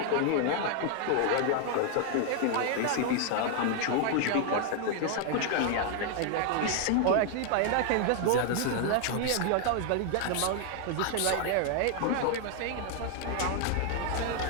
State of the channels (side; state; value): both; different; correlation 0.00